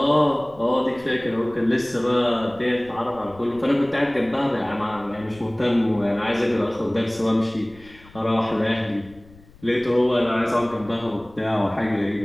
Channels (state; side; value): noise; left; rumble, 24 dB below the sound